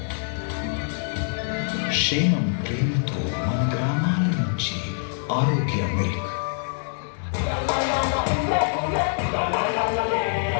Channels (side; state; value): right; silent; digital silence